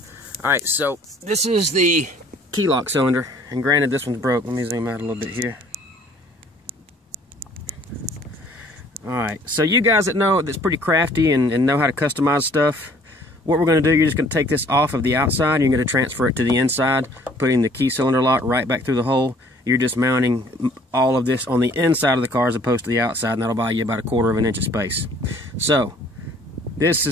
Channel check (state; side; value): normal; both; correlation 0.57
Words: Alright, so this is the key lock cylinder, and granted this one's broke. Let me zoom out a little bit here. Alright, so you guys that know that's pretty crafty and know how to customize stuff, what we're going to do, you're just going to take this off of the outside, and you're going to transfer it to the inside, putting the key cylinder lock right back through the hole. You're just mounting all of this on the inside of the car as opposed to the outside, and that'll buy you about 1/4 of an inch of space. So, this